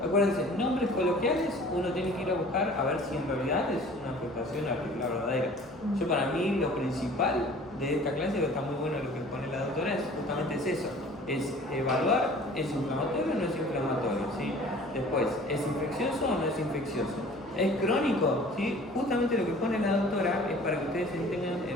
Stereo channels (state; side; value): normal; both; correlation 0.48